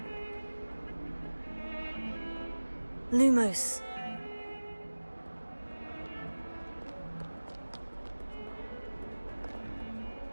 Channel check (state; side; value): inverted; both; correlation -1.00